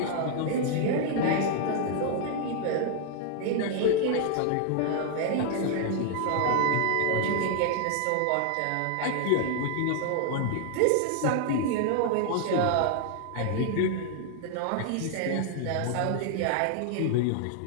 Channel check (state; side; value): different; both; correlation 0.00